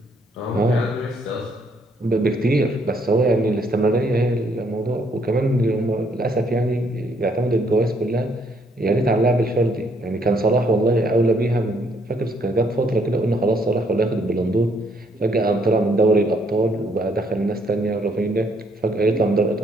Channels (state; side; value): normal; both; correlation 0.69